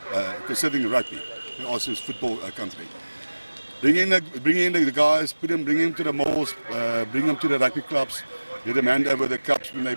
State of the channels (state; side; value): inverted; both; correlation -1.00